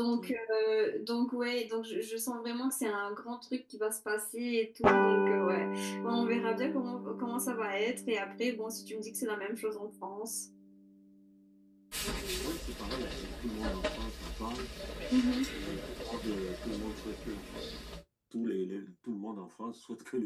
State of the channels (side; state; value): both; identical; correlation 1.00